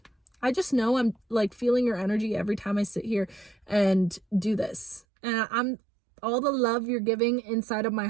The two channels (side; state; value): left; drops out; at 5.1 s